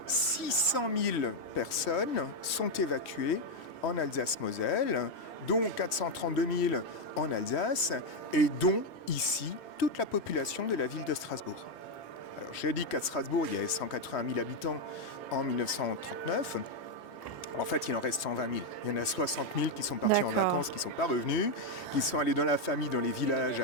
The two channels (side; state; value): right; late; 3.1 ms